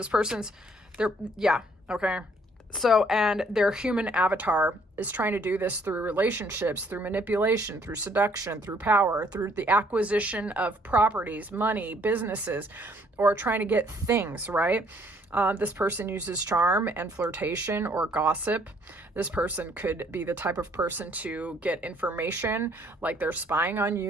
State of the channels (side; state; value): both; normal; correlation 0.63